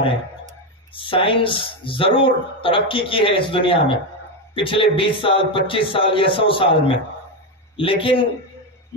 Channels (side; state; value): both; normal; correlation 0.10